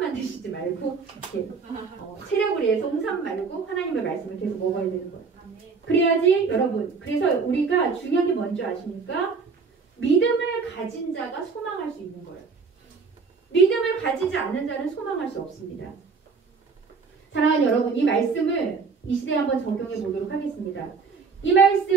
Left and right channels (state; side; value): quieter; left; 5.0 dB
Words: 드시지 말고, 이렇게 체력을 위해서 홍삼 말고 하나님의 말씀을 계속 먹어야 되는 거예요. 그래야지 여러분, 그래서 우리가 중요한 게 뭔지 아십니까? 믿음을 가진 자가 소망할 수 있는 거예요. 믿음을 가지지 않는 자는 소망할 수 없습니다. 사랑하는 여러분, 이 말씀을 이 시대에 한번 적용해 보도록 하겠습니다. 이